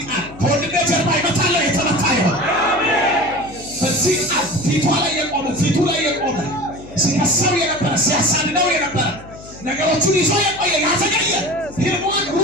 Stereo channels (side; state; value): left; noise; hum, 18 dB below the sound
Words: ቃል ከወንድሜ ጀርባ ይመታለሁ። የተመታ ይሆን በዚህ ቃል ፊቱ ላይ የቆመ ሲከሰው የነበረ ሲያሳድደው የነበረ ነገሮቹን ይዞ የቆየ ያዘገየ ፊልሙን